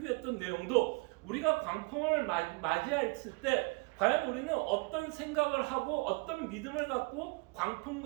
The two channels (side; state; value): left; quieter; 29.0 dB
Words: 내용도 우리가 광풍을 맞이했을 때 과연 우리는 어떤 생각을 하고 어떤 믿음을 갖고 광풍